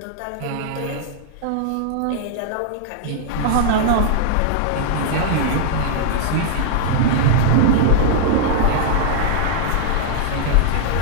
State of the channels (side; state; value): both; different; correlation -0.01